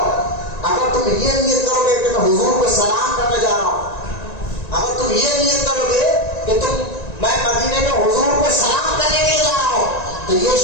اگر تم یہ نیت کرو گے کہ میں حضور کو سلام کرنے جا رہا ہوں، اگر تم یہ نیت کرو گے کہ میں مدینے میں حضور کو سلام کرنے کے لیے جا رہا ہوں تو یہ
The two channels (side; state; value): right; late; 1.9 ms